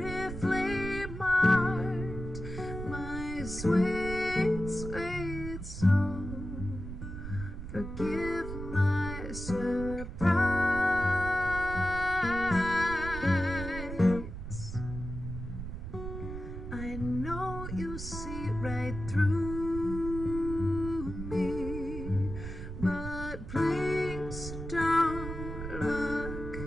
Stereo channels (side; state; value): right; noise; rumble, 8 dB below the sound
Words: marked, my sweet, sweet soul. Forgive my surprise. I know you see right through me, but please don't look